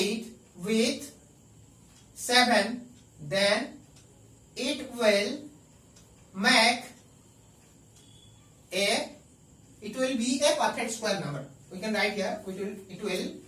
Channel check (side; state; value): both; identical; correlation 1.00